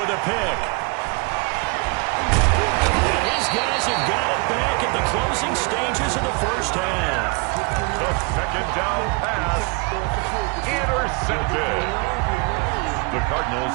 a pick. And his guys have got it back at the closing stages of the first half. The 2nd down pass intercepted. The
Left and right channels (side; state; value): left; quieter; 32.3 dB